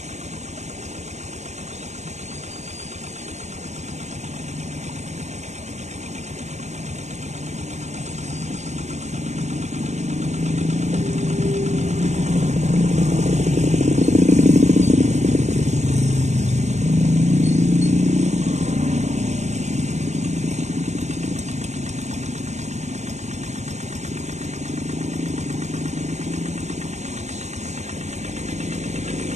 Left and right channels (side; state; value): left; late; 0.33 ms